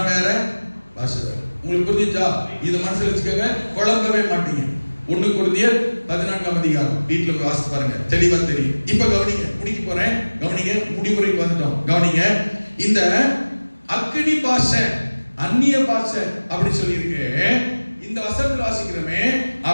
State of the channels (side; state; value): both; inverted; correlation -1.00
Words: வேற, பாஷை வேற. உங்களுக்கு புரிஞ்சுச்சா? இது மனசுல வச்சுக்கோங்க, குழம்பவே மாட்டீங்க. 1 கொரிந்தியர் 14ஆம் அதிகாரம் வீட்டுல போய் வாசித்து பாருங்க, தெளிவா தெரியும். இப்ப கவனிங்க, முடிக்க போறேன். கவனிங்க, முடிவுரைக்கு வந்துட்டோம். கவனிங்க, இந்த அக்கினி பாஷை, அந்நிய பாஷை அப்படி சொல்லி இருக்கு. இந்த வசனத்தில் வாசிக்கிறோமே,